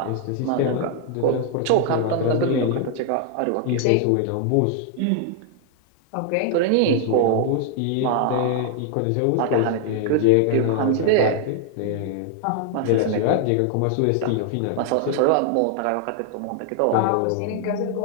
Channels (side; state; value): both; different; correlation 0.00